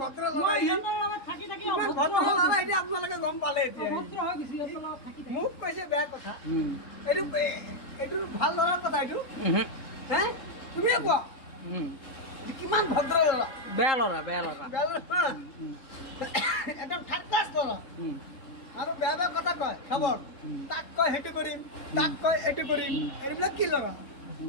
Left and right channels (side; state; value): right; late; 3.7 ms